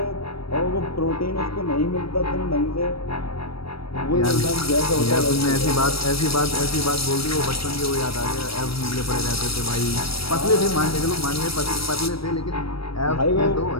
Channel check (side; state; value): right; late; 0.75 ms